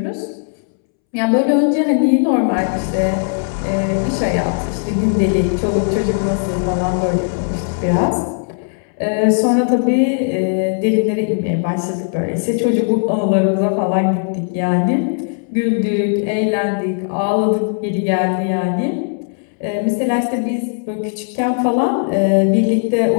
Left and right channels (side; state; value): right; silent; 68 dB below the other